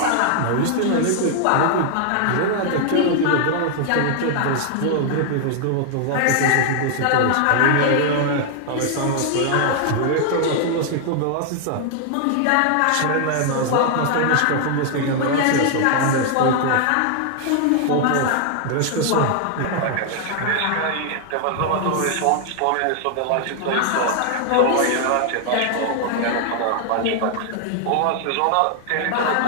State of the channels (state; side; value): different; both; correlation 0.00